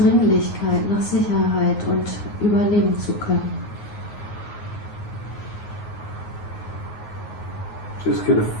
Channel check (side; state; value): right; late; 9.5 ms